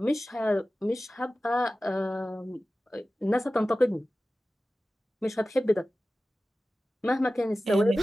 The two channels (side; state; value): both; normal; correlation 0.96